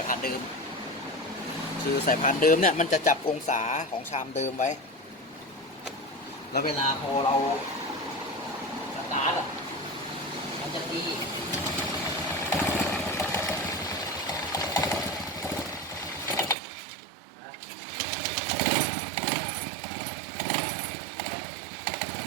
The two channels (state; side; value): drops out; left; at 16.6 s